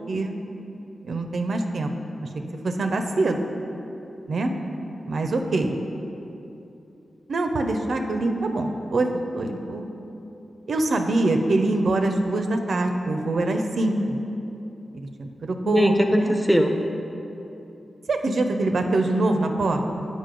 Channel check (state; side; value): normal; both; correlation 0.91